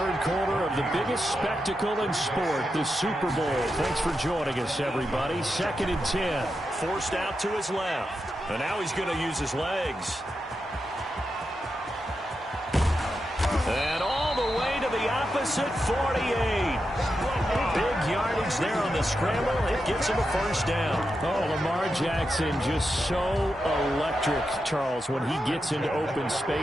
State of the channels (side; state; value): both; normal; correlation 0.87